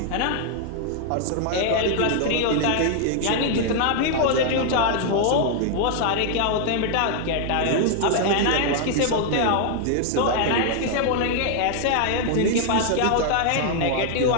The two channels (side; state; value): both; different; correlation 0.00